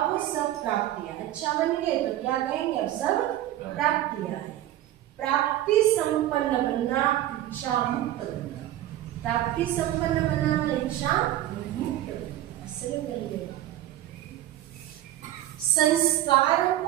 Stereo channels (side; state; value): left; quieter; 13.5 dB